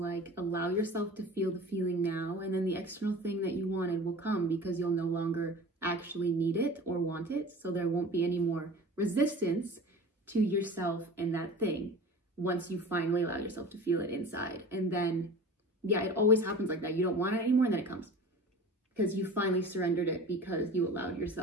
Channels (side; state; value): both; normal; correlation 0.38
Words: allow yourself to feel the feeling now, and then the external thing that you wanted will come, because you'll no longer actually need it or want it. So there won't be any more resistance to yourself and that thing once you finally allow yourself to feel it inside. And then, it always happens like that. You don't want it anymore, and then it comes. Because you finally surrendered it, because you allowed